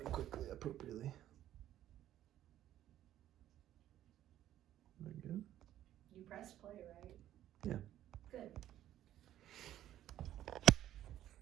quickly, appropriately. Very good. You pressed play, right? Yeah. Good.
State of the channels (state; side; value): quieter; left; 12.4 dB